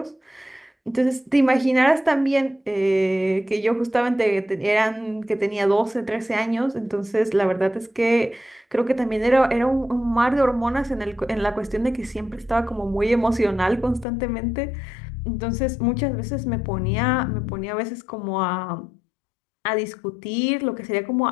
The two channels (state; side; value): drops out; right; at 14.1 s